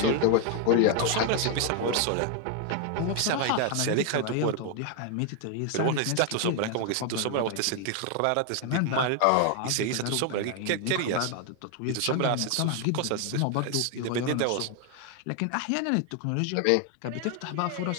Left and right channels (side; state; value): both; different; correlation 0.01